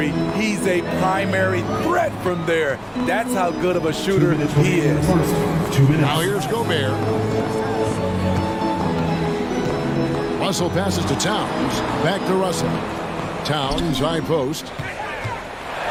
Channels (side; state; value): both; identical; correlation 1.00